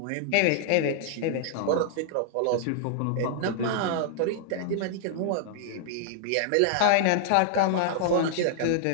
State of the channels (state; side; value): different; both; correlation -0.01